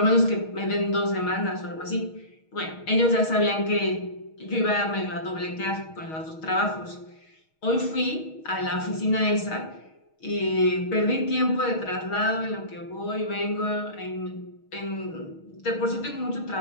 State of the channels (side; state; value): right; late; 6.4 ms